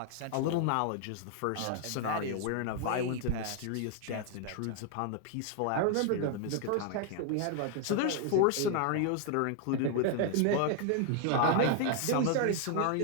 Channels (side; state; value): both; different; correlation 0.00